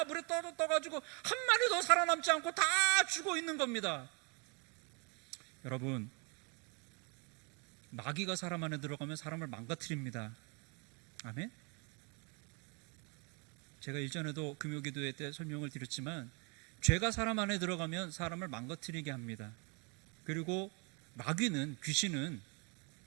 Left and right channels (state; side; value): quieter; left; 33.3 dB